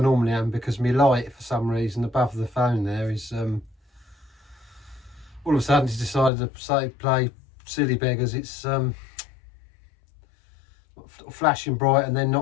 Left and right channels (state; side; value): drops out; right; at 6.3 s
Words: am, because my light, for some reason, above the phone there is, all of a sudden it's decided to play silly beggars. It's flashing bright and then